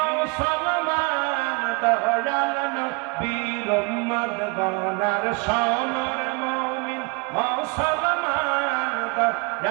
দয়াল নবীর উম্মত গণ, সোনার মুমিন মুসলমান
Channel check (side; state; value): left; quieter; 31.2 dB